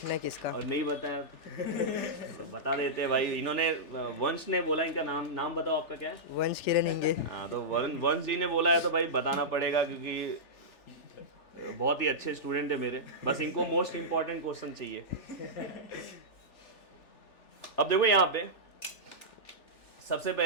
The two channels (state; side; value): late; right; 3.4 ms